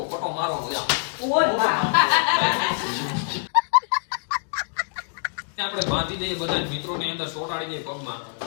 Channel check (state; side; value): silent; right; digital silence